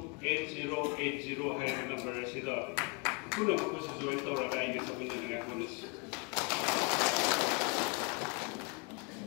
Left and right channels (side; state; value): right; quieter; 32.0 dB